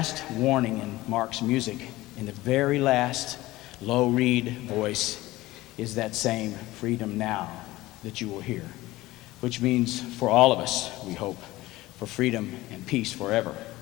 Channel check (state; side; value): quieter; right; 18.1 dB